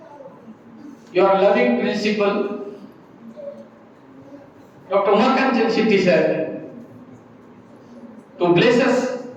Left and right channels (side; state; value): both; identical; correlation 1.00